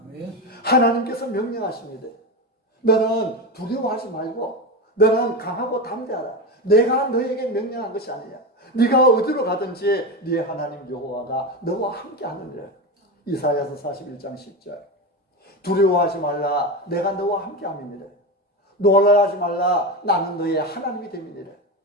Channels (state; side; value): normal; both; correlation 0.19